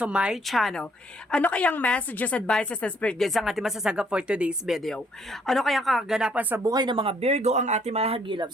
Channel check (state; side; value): normal; both; correlation 0.66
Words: my channel. Ano kayang messages, advices, and spirit guides ang ating masasagap for today's video? Ano kayang kaganapan sa buhay ng mga Virgo ang ating mga